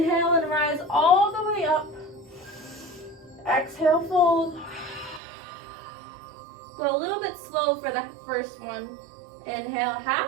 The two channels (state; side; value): drops out; left; at 5.2 s